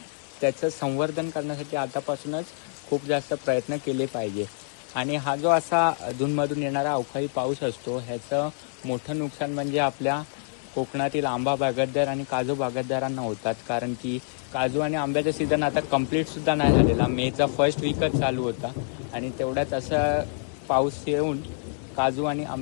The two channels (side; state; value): right; silent; digital silence